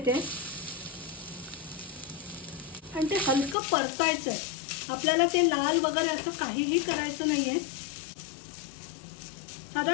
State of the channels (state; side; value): drops out; right; at 3.6 s